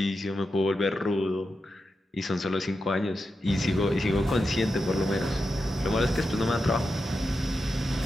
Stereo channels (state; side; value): normal; both; correlation 0.89